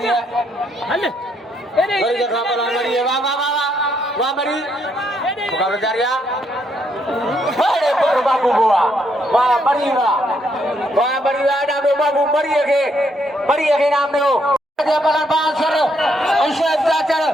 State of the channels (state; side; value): normal; both; correlation 0.74